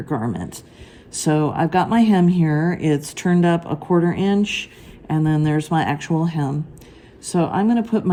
garment. So I've got my hem here. It's turned up 1/4 inch, and then there's my actual hem. So I'm going to put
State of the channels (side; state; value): both; identical; correlation 1.00